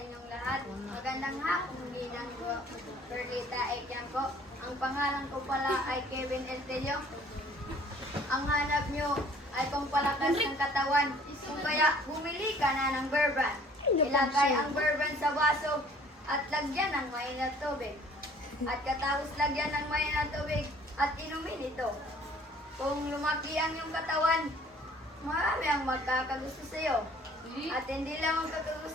lahat. Magandang hapon din ang Perlita A. Campo. Ang pangalan ko pala ay Kevin Eltelio. Ang hanap nyo ay pampalakas ng katawan. Kung kaya bumili ka na ng bourbon. Ilagay ang bourbon sa baso at lagyan ng mainit tubig. At katapos lagyan ng mainit tubig at inumin ito. Kung lumaki ang iyong katawan, marami ang magkakagusto sa iyo. At hindi lang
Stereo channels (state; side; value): normal; both; correlation 0.54